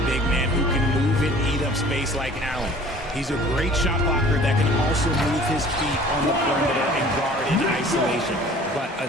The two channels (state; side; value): normal; both; correlation 0.48